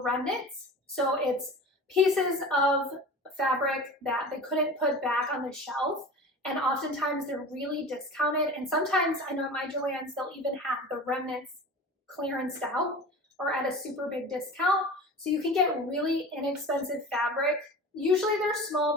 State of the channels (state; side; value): normal; both; correlation 0.36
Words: remnants. So it's pieces of fabric that they couldn't put back on the shelf. And oftentimes they're really discounted. And sometimes I know at my Joann's, they'll even have the remnants clearanced out or at a super big discount. So you can get really inexpensive fabric. Usually they're